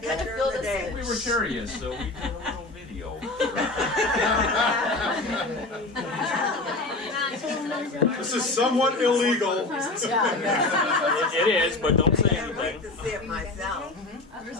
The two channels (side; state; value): right; quieter; 3.1 dB